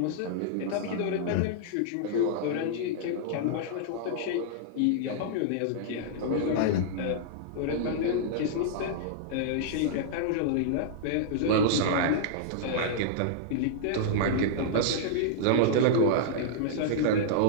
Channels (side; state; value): both; different; correlation -0.02